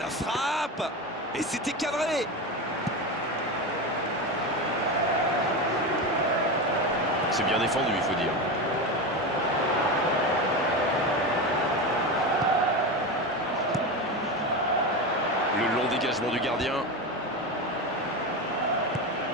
frappe. Et c'était cadré. C'est bien défendu, il faut dire. Le long dégagement du gardien.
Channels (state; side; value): normal; both; correlation 0.20